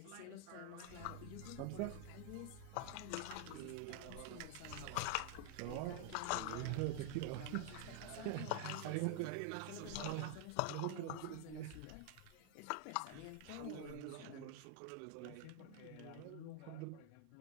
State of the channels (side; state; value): both; different; correlation 0.00